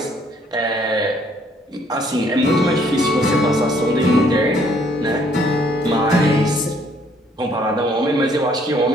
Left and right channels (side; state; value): both; normal; correlation 0.64